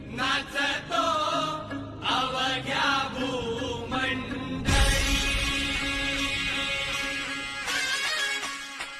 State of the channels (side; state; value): both; identical; correlation 1.00